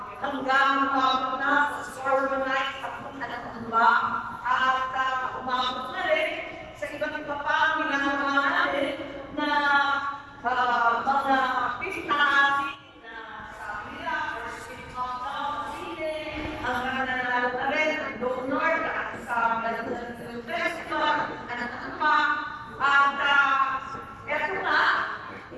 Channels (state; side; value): identical; both; correlation 1.00